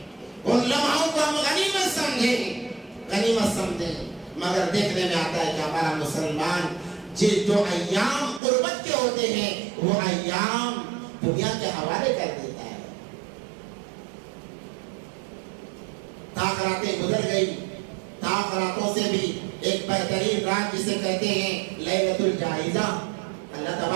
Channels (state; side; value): drops out; left; at 8.4 s